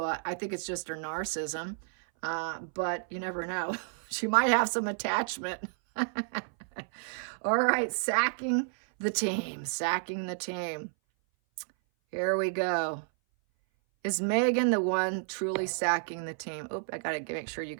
I think it's just her narcissism. But you never know. She might have some attachment. All right, sacking the team. Sacking the team. Here we go. Is Meghan the one truly sacking the team? Oop, I got to make sure you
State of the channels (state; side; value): silent; left; 57 dB below the other